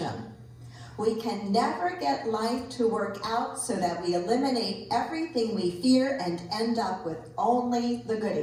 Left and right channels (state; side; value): identical; both; correlation 1.00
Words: We can never get life to work out so that we eliminate everything we fear and end up with only the